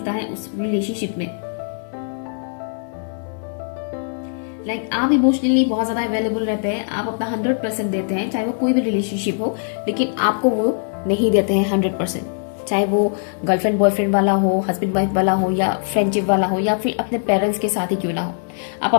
है उस रिलेशनशिप में। लाइक आप इमोशनली बहुत ज्यादा अवेलेबल रहते हैं, आप अपना 100% देते हैं, चाहे वो कोई भी रिलेशनशिप हो, लेकिन आपको वो नहीं देते हैं 100%। चाहे वो गर्लफ्रेंड बॉयफ्रेंड वाला हो, हस्बैंड वाइफ वाला हो, या फ्रेंडशिप वाला हो, या फिर अपने पेरेंट्स के साथ ही क्यों ना हो, आप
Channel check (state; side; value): silent; right; digital silence